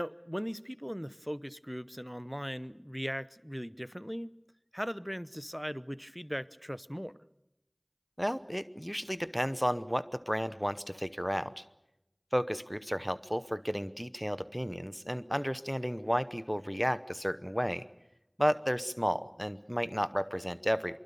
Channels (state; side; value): identical; both; correlation 1.00